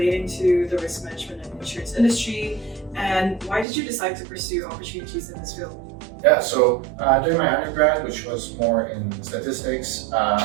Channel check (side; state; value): left; drops out; at 3.7 s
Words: to the risk management and insurance industry? And why did you decide to pursue opportunities in this field? Yeah, so during my undergrad, which was more in statistics,